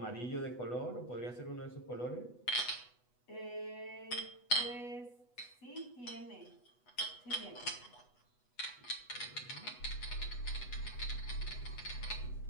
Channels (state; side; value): late; right; 8.1 ms